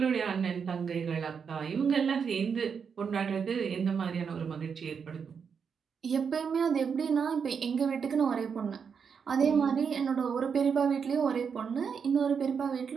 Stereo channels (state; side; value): quieter; left; 6.4 dB